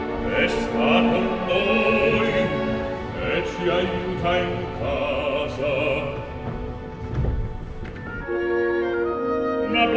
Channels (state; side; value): identical; both; correlation 1.00